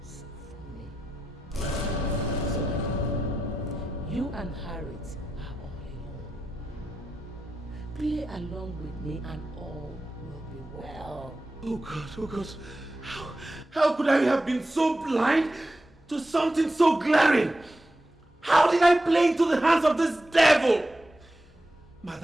from me. So, you and Harriet are all alone. Play along with me and all will be well. Oh God, how could I have been so blind to something so glaring? How did I play into the hands of this devil?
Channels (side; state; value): both; normal; correlation 0.90